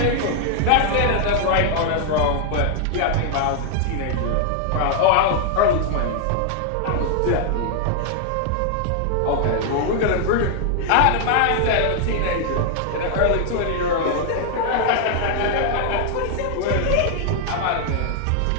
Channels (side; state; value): both; different; correlation 0.00